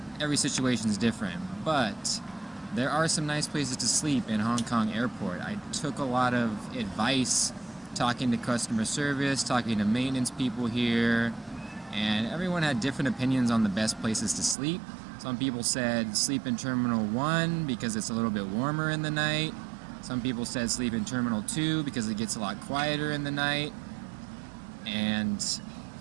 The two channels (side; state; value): left; drops out; at 14.6 s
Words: Every situation's different, but there are some nice places to sleep in Hong Kong airport. I took a lot of advice talking to customer service, talking to maintenance people here, and everyone had different opinions on the best places to sleep. Some people said sleep in Terminal 1 because it's a little bit warmer in the night. Some people said sleep in Terminal 2 because it gets a lot quieter in the night. And